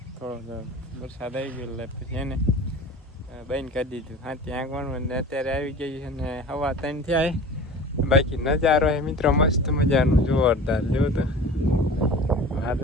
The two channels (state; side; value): normal; both; correlation 0.38